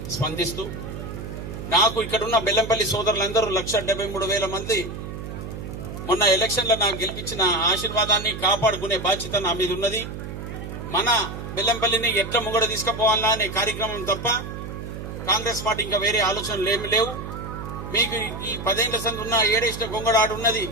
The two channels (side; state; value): right; noise; hum, 8 dB below the sound